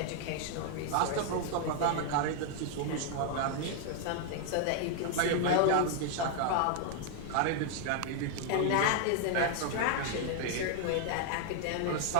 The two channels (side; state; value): both; different; correlation 0.00